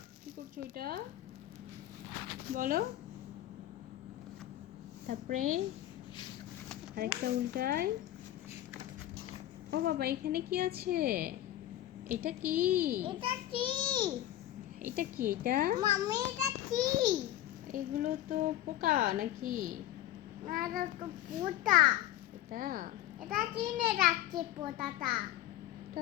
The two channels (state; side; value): quieter; right; 13.6 dB